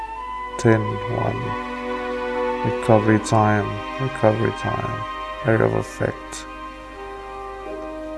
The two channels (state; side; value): identical; both; correlation 1.00